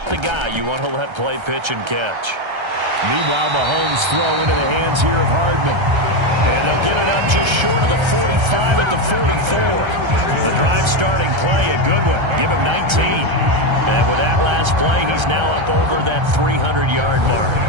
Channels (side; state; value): left; late; 1.3 ms